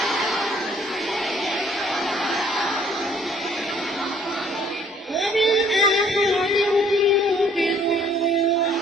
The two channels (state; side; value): normal; both; correlation 0.59